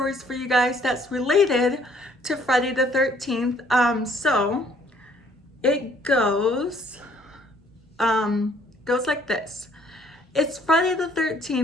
for you guys that's related to Friday the 13th. So it goes like this. It's Friday the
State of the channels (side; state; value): both; normal; correlation 0.62